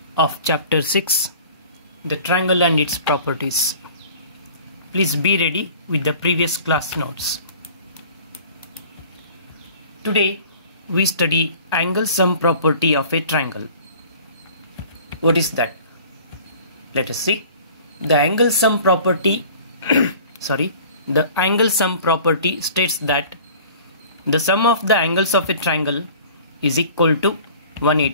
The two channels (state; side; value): inverted; both; correlation -0.47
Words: of chapter 6, the triangle and its properties. Please be ready with the previous class notes. Today we study angle sum property of a triangle. What is that? Let us see. The angle sum property the angle sum property states that the sum of the angles of a triangle is equal to